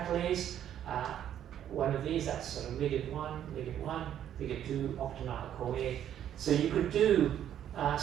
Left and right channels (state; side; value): quieter; left; 10.4 dB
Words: One of these, that's sort of ligand 1, ligand 2, octonyl-CoA. So you could do